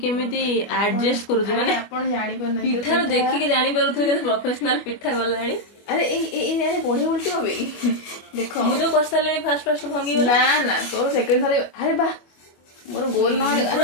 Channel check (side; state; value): right; late; 25 ms